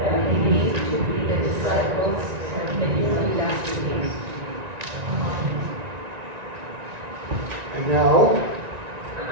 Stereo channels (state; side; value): late; left; 1.9 ms